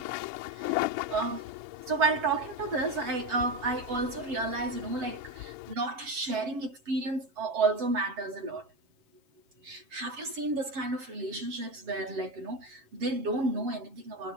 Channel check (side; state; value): left; late; 7.2 ms